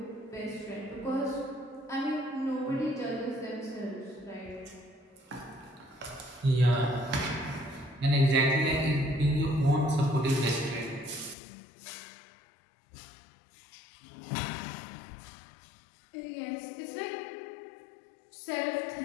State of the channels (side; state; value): right; drops out; at 11.4 s